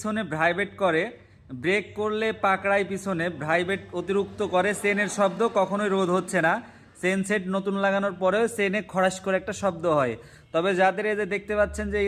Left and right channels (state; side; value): identical; both; correlation 1.00